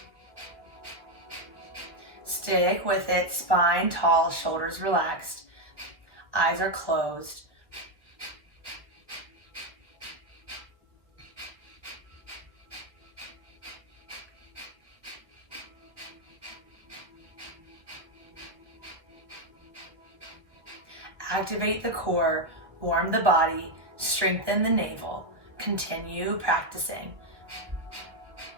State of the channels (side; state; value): left; late; 1.1 ms